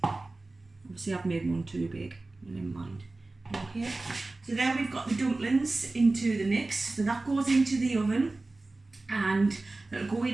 Obviously I've made one too big, never mind. Okay, so there we've got the dumplings into the mix. So that goes into the oven and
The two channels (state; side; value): quieter; left; 3.2 dB